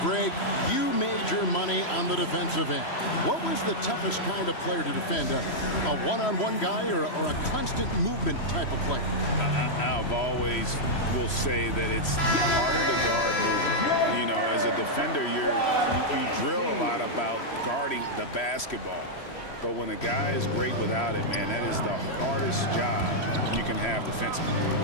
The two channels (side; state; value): right; late; 3.1 ms